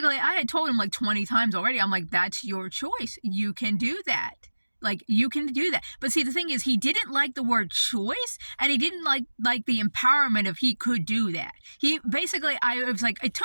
I had told him like 20 times already, I'm like, that's your choice. You can do that. Like, you can do that. But see, the thing is, he didn't like the word choice, and he didn't like the empowerment of he could do that. He basically, it was like, it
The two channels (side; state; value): both; inverted; correlation -1.00